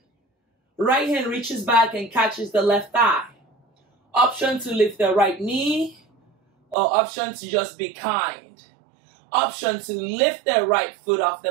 Right hand reaches back and catches the left thigh. Option to lift the right knee, or option to just be kind. Option to lift the right foot off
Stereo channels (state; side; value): drops out; left; at 6.8 s